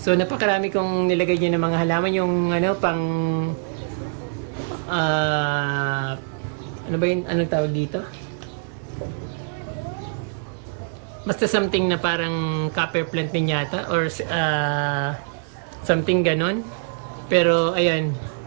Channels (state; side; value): silent; left; digital silence